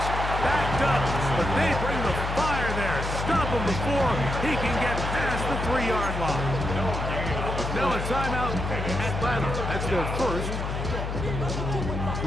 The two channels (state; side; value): noise; left; hum, 3 dB below the sound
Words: backed up, but they bring the fire there. Stop them before he can get past the 3-yard line. Now a timeout. Atlanta, that's their first.